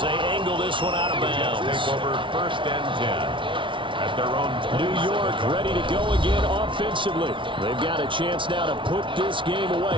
they angle this one out of bounds. Take over first and 10. At their own New York ready to go again offensively. They've got a chance now to put this game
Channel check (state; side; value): late; left; 0.25 ms